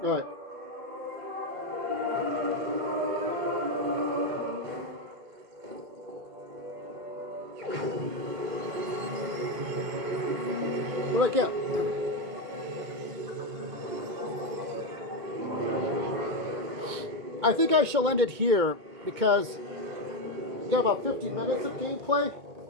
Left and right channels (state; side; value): late; left; 2.1 ms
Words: All right. What do I get? I think I shall end it here because we got about 50 minutes of gameplay.